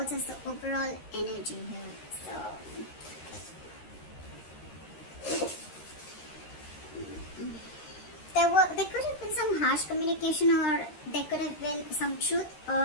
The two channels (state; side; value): late; right; 13 ms